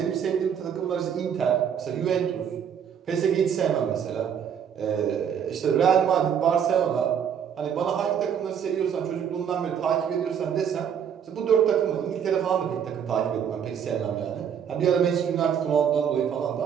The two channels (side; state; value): left; quieter; 8.1 dB